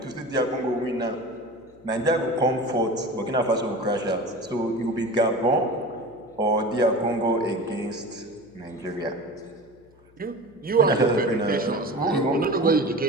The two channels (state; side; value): noise; left; hum, 29 dB below the sound